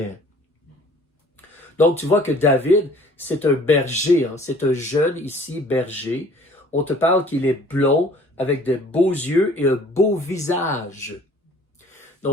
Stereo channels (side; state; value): both; normal; correlation 0.53